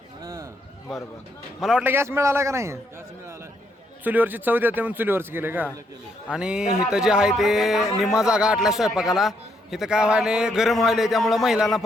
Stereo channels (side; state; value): both; normal; correlation 0.75